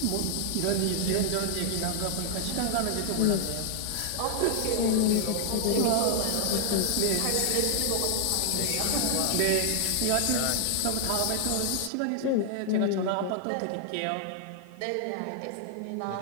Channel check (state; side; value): different; both; correlation 0.00